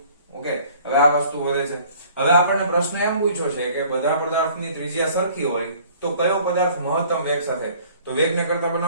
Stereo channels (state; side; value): inverted; both; correlation -0.53